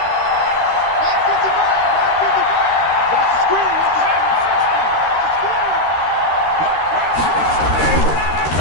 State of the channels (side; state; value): right; late; 13 ms